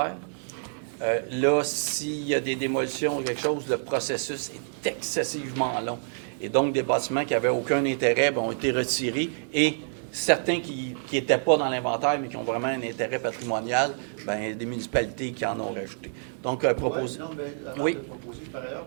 là, s'il y a des démolitions ou quelque chose, le processus est excessivement long. Et donc, des bâtiments qui n'avaient aucun intérêt ont été retirés et certains qui n'étaient pas dans l'inventaire, mais qui ont vraiment un intérêt patrimonial, des municipalités qui en ont rajouté. Donc, proposer. Ouais, non, mais avant Oui. de proposer, par ailleurs,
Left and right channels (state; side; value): silent; left; digital silence